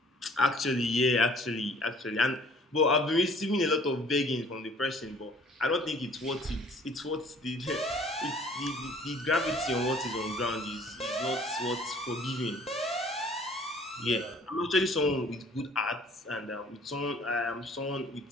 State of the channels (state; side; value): normal; both; correlation 0.54